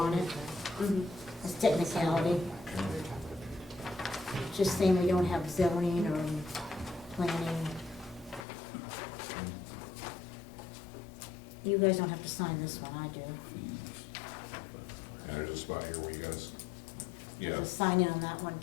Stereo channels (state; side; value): drops out; right; at 8.5 s